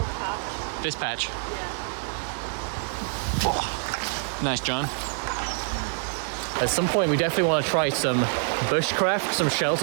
patch. This patch. Yeah. Nice, John. At some point, we definitely want to try some bushcraft, some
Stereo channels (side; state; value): left; silent; 61 dB below the other